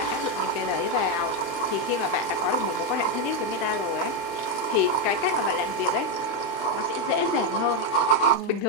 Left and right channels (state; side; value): late; right; 35 ms